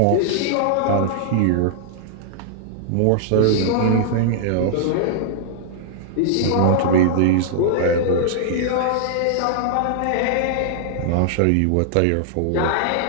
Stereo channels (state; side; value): different; both; correlation -0.01